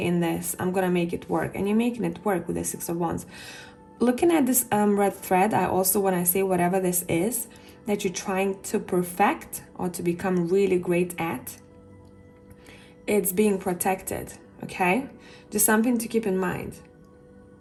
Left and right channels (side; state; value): both; identical; correlation 1.00